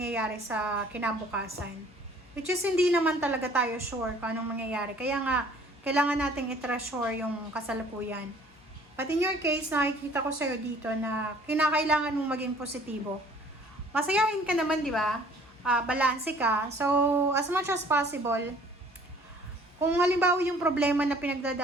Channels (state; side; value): normal; both; correlation 0.55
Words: sa kinabukasan. Which is, hindi naman talaga tayo sure kung anong mangyayari. Kaya nga, kailangan nating i-treasure yung kasalukuyan. But in your case, nakikita ko sa'yo dito na kinakailangan mong maging positibo. Masayahin ka naman, di ba? Balanse ka. So, as much as possible, kung halimbawa yung problema na